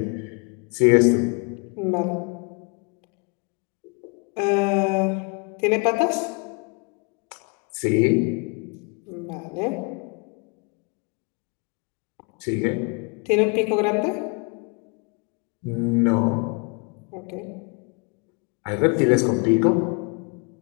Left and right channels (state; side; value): quieter; right; 33.5 dB